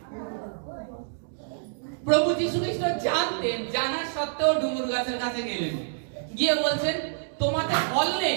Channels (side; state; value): left; silent; digital silence